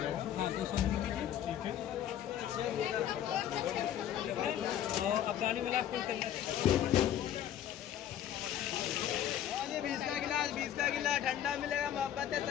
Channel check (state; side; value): quieter; right; 10.8 dB